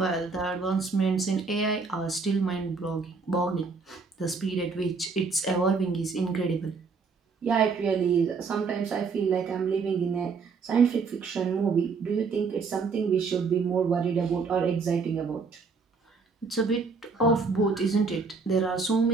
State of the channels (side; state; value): left; quieter; 4.8 dB